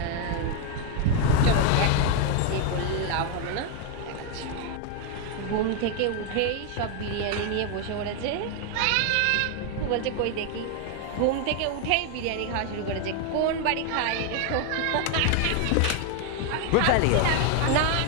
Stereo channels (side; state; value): both; different; correlation 0.01